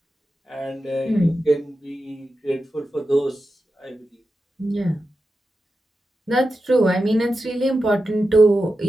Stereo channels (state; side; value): normal; both; correlation 0.91